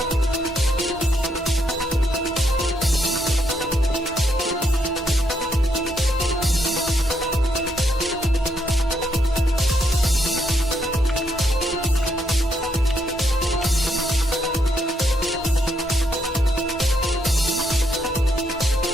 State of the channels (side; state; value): both; normal; correlation 0.76